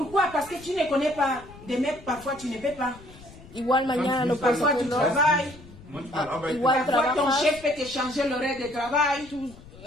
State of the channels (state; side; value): noise; left; rumble, 20 dB below the sound